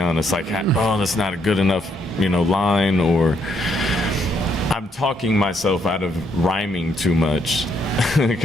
Like, oh, that's not a good enough, line, or I'm talking myself out of rhyming too much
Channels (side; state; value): both; normal; correlation 0.73